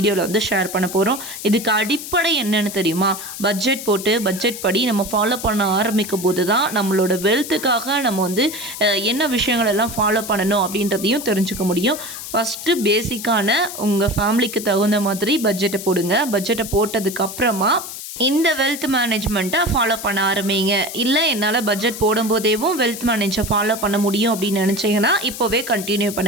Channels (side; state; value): left; noise; hiss, 10 dB below the sound